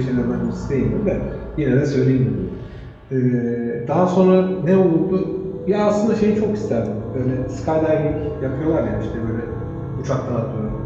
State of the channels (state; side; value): identical; both; correlation 1.00